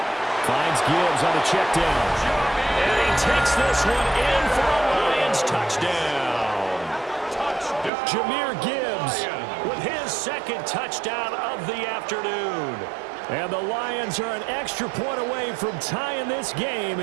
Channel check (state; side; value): drops out; left; at 7.9 s